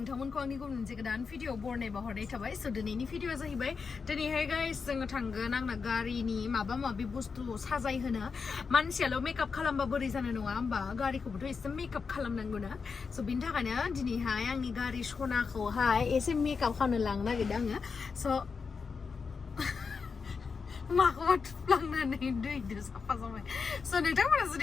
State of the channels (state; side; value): quieter; right; 5.3 dB